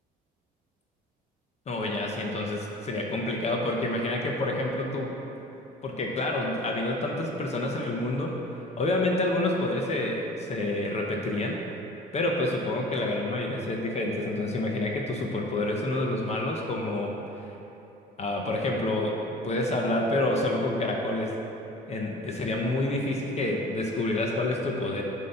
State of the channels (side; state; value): both; normal; correlation 0.44